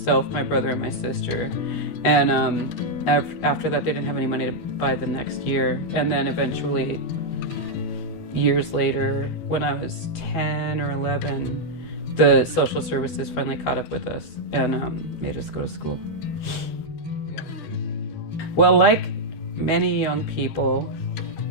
my brother, and my sister. And after that, they didn't have any money to buy the next year. And then eventually, years later, when I was 10 or 11, the social services finally caught up with us and made us go to school. Well, like many young people,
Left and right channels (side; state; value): right; late; 12 ms